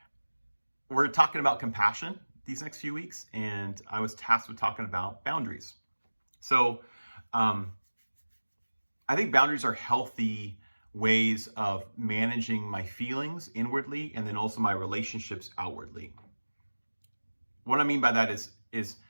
we're talking about compassion these next few weeks, and I was tasked with talking about boundaries. So, um, I think boundaries are healthy ways of managing my feelings inwardly and then also my relationships outwardly. What I mean by that is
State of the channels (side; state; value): both; inverted; correlation -1.00